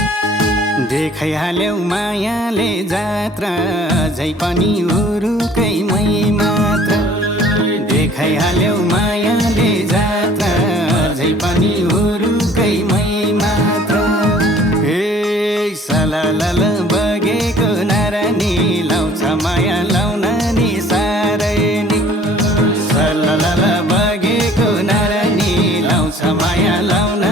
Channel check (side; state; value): both; normal; correlation 0.53